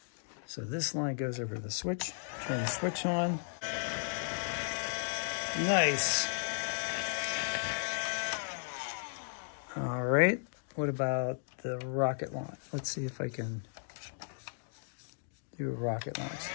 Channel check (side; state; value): right; silent; digital silence